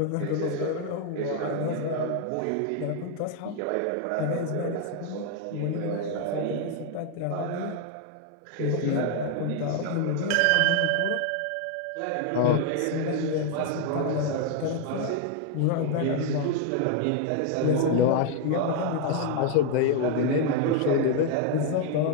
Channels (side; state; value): both; different; correlation 0.01